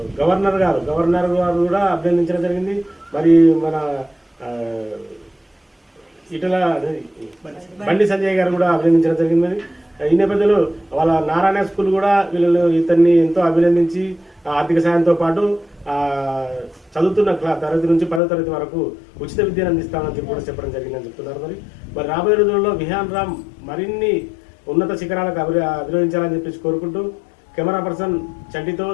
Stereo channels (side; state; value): right; drops out; at 18.2 s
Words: గవర్నర్ గారు కూడా అభినందించడం జరిగింది. మరి మన ఇటల బండి సంజయ్ గారు కూడా అభినందించడం జరిగింది. మరి ఈ నేపథ్యంలో వాళ్ళ నారాయణ స్కూల్ కూడా ఇతన్ని ఎంతో అభినందించి ఆర్థిక సాయంతో పాటు చదువుతున్న తరగతి నుంచి 10వ తరగతి వరకు ఉచిత విద్యను అందిస్తామని చెప్పి కూడా చెప్పడం జరిగిందని చెప్తున్నారు. మరి రాబోయే రోజుల్లో విహాన్ రామ్ మరిన్ని ఉన్నత శిఖరాలకు అభినందించాలని చెప్పేసి కోరుకుంటూ కెమెరా పర్సన్ చంటితో